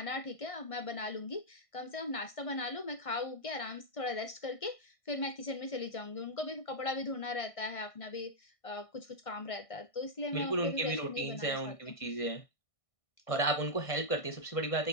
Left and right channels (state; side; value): late; right; 1.6 ms